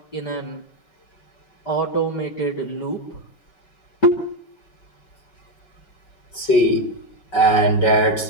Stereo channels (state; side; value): late; right; 5.4 ms